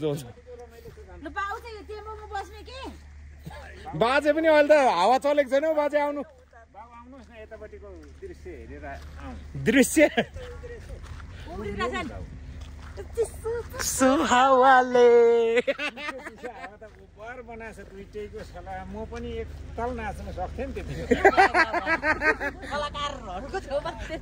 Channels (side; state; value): both; identical; correlation 1.00